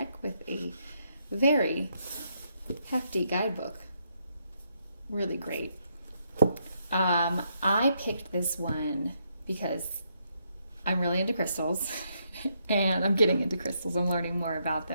with a very hefty guidebook. Really great. I picked this one because I'm really into crystals and I'm getting into crystals. I'm learning more about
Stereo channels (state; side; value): inverted; both; correlation -0.76